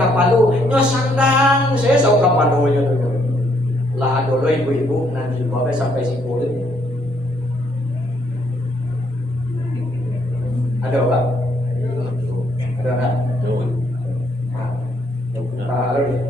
nyo sandang saya sok kapalo nya tu lah dulu ibu-ibu nanti bawa sampai simpul ada pak ada tak tahu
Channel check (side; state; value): both; normal; correlation 0.70